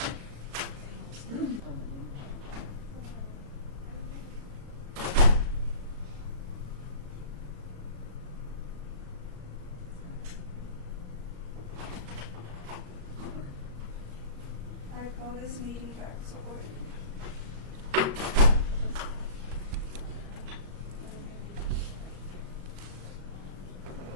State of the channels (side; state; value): left; late; 35 ms